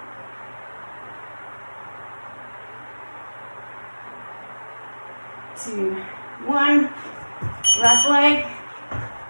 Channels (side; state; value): both; inverted; correlation -1.00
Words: Two, one. Left leg.